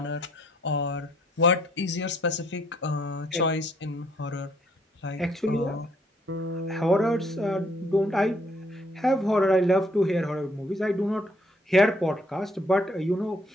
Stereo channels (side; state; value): both; normal; correlation 0.66